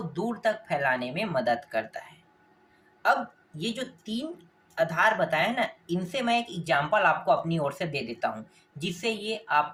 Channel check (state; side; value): identical; both; correlation 1.00